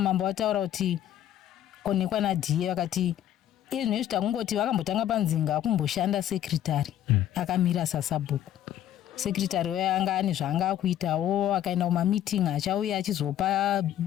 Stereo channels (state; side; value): quieter; right; 11.5 dB